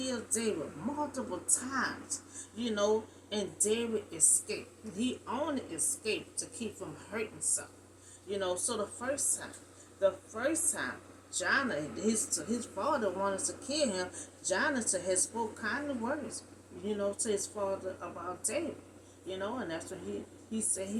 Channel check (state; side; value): identical; both; correlation 1.00